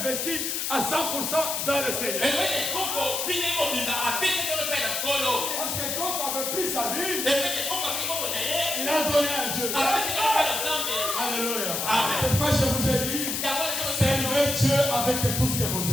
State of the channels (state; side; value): noise; left; hiss, 1 dB below the sound